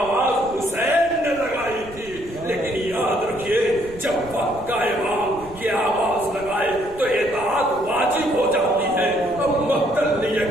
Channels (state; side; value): noise; right; rumble, 19 dB below the sound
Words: حسین نے لگائی تھی، لیکن یاد رکھیے جب وقت کا امام یہ آواز لگائے تو اطاعت واجب ہو جاتی ہے. اب مقتل نے